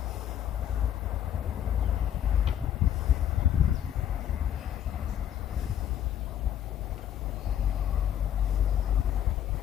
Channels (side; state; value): right; quieter; 10.4 dB